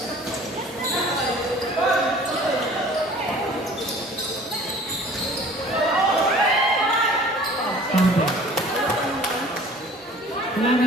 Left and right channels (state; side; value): normal; both; correlation 0.49